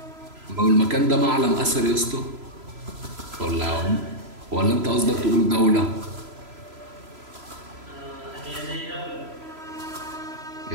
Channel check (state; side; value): late; left; 3.0 ms